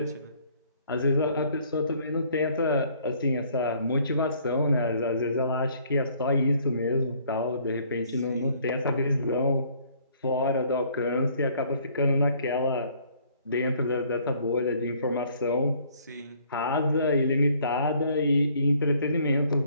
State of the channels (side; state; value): both; inverted; correlation -0.61